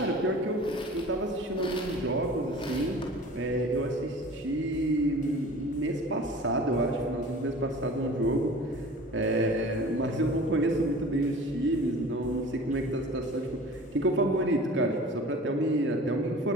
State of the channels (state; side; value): normal; both; correlation 0.42